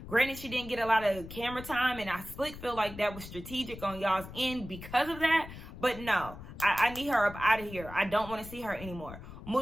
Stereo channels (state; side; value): noise; left; rumble, 13 dB below the sound